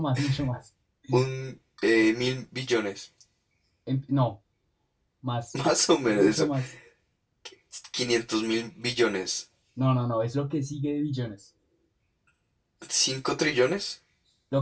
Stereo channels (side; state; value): both; identical; correlation 1.00